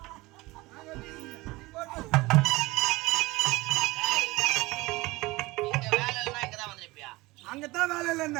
அங்கதான் வேலை இல்ல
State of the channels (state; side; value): quieter; left; 21.4 dB